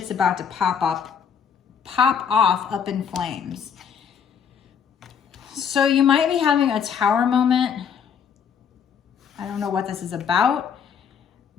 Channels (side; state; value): right; quieter; 7.3 dB